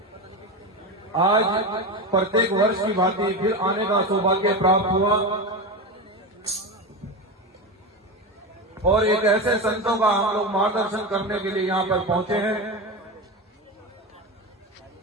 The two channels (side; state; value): both; normal; correlation 0.20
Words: आज प्रत्येक वर्ष की भांति फिर आने का सौभाग्य प्राप्त हुआ और एक ऐसे संतों का हम लोग मार्गदर्शन करने के लिए यहाँ पर पहुंचे हैं।